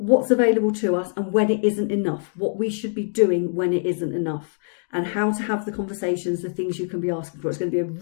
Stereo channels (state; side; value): silent; right; digital silence